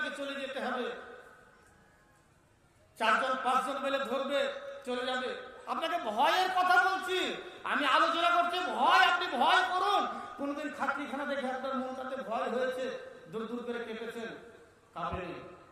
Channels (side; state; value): both; identical; correlation 1.00